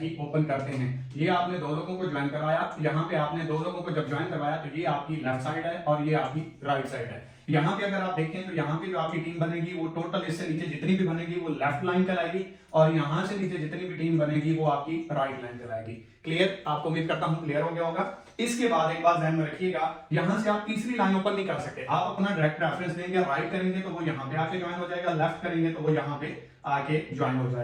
ही ओपन करते हैं। ये आपने 2 लोगों को ज्वाइन करवाया, यहाँ पे आपने 2 लोगों को जब ज्वाइन करवाया तो ये आपकी लेफ्ट साइड है और ये आपकी राइट साइड है। यहाँ पे अगर आप देखें तो यहाँ पे जो आपकी टीम बनेगी वो टोटल इससे नीचे जितनी भी बनेगी वो लेफ्ट लाइन कहलाएगी और यहाँ से नीचे जितनी भी टीम बनेगी वो आपकी राइट लाइन कहलाएगी। क्लियर? आपको उम्मीद करता हूँ क्लियर हो गया होगा। इसके बाद एक बात ध्यान में रखिएगा, यहाँ से आप तीसरी लाइन ओपन नहीं कर सकते। आप अपना डायरेक्ट रेफरेंस देंगे, राइट करेंगे तो वो यहाँ पे आके ज्वाइन हो जाएगा, लेफ्ट करेंगे तो वो यहाँ पे आके ज्वाइन हो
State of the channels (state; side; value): identical; both; correlation 1.00